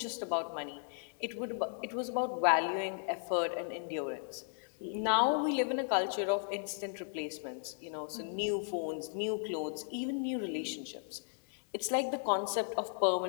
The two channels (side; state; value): right; silent; digital silence